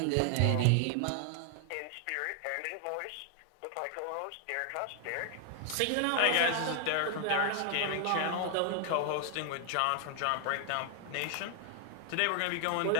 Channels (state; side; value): different; both; correlation 0.00